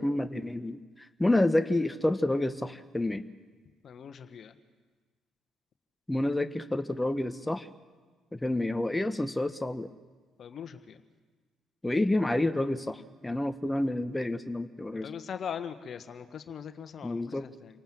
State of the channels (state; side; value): normal; both; correlation 0.97